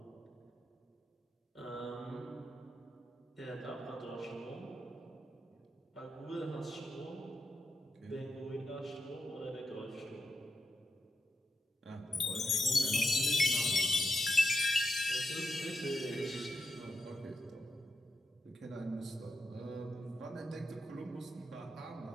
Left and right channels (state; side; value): normal; both; correlation 0.87